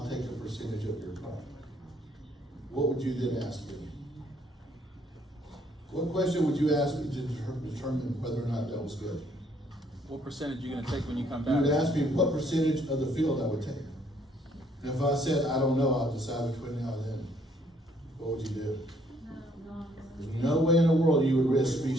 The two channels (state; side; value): normal; both; correlation 0.67